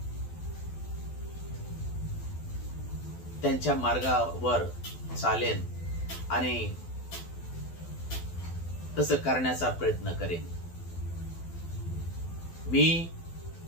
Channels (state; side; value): late; right; 12 ms